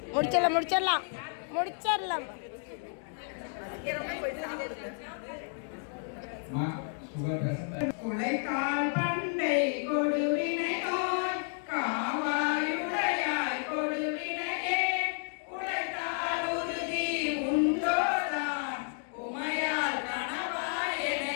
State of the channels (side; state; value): right; silent; 57 dB below the other